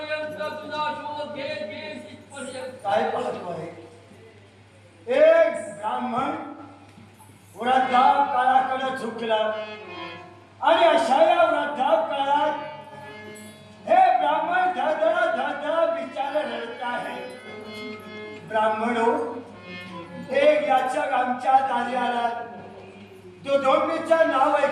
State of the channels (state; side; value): identical; both; correlation 1.00